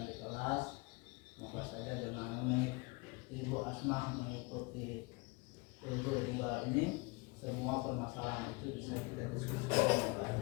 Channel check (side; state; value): right; quieter; 26.6 dB